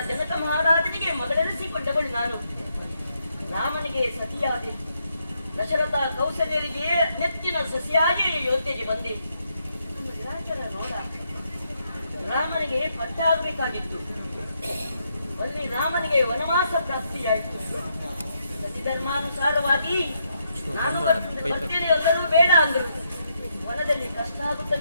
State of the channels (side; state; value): both; inverted; correlation -0.78